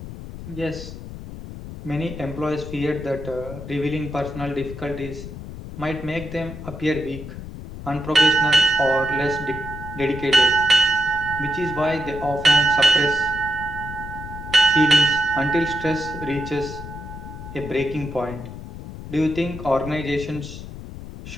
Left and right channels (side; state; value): left; noise; rumble, 11 dB below the sound